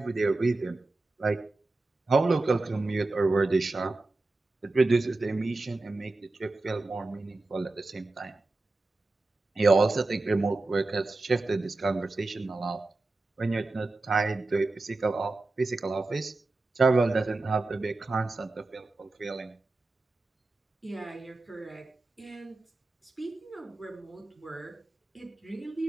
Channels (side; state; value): left; quieter; 3.2 dB